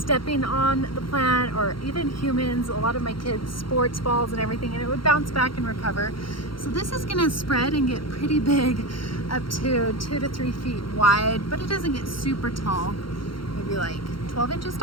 on the plant, or even humans, a lot of my kids' sports balls and everything, and it would bounce back and recover. So this is gonna spread and get pretty big, up to 2 to 3 feet wide, but it doesn't get super tall, maybe like 12 inches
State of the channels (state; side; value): late; right; 0.73 ms